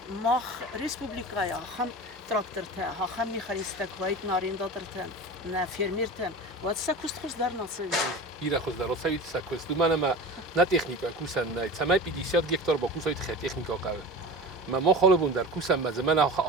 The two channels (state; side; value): normal; both; correlation 0.32